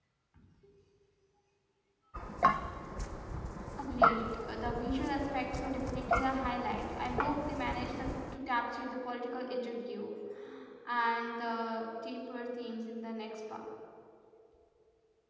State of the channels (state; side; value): identical; both; correlation 1.00